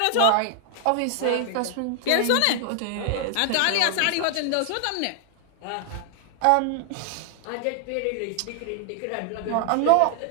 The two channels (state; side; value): different; both; correlation 0.00